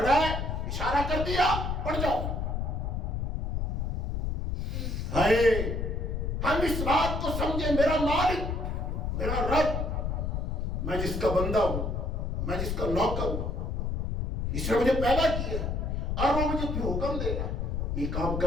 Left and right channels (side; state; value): left; noise; rumble, 1 dB below the sound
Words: ہے, اشارہ کر دیا, پڑ جاؤ. ہائے, ہم اس بات کو سمجھے, میرا مالک, میرا رب, میں جس کا بندہ ہوں, میں جس کا نوکر ہوں, اس نے مجھے پیدا کیا ہے, اور وہ مجھے پھر حکم دے رہا ہے, یہ کام